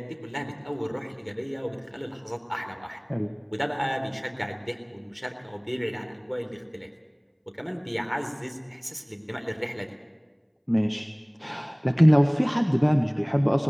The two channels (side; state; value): both; identical; correlation 1.00